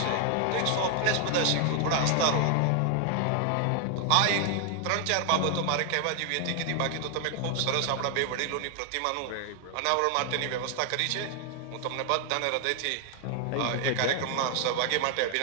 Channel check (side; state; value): both; different; correlation 0.00